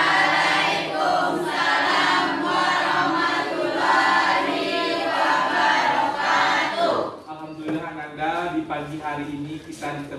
warahmatullahi wabarakatuh. Alhamdulillah Ananda, di pagi hari ini kita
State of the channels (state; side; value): identical; both; correlation 1.00